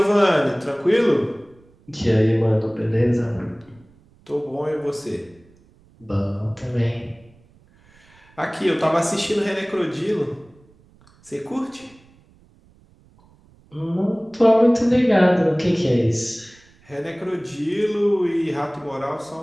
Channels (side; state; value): right; noise; rumble, 30 dB below the sound